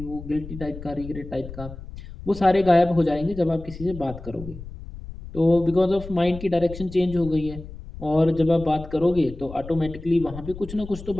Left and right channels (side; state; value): left; noise; rumble, 13 dB below the sound